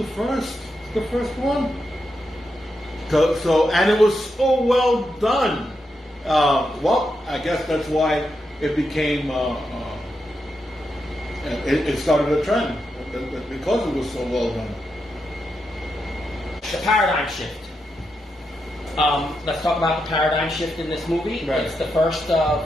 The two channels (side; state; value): both; normal; correlation 0.85